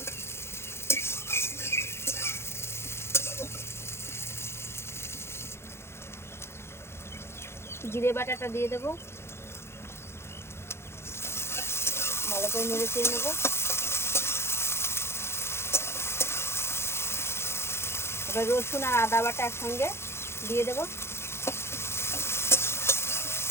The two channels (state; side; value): late; right; 0.12 ms